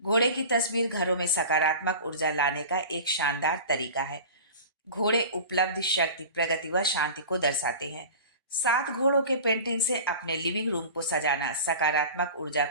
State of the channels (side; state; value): both; inverted; correlation -0.36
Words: घोड़े की तस्वीर घरों में सकारात्मक ऊर्जा लाने का एक शानदार तरीका है। घोड़े उपलब्धि, शक्ति, प्रगति व शांति को दर्शाते हैं। 7 घोड़ों के पेंटिंग से अपने लिविंग रूम को सजाना सकारात्मक ऊर्जा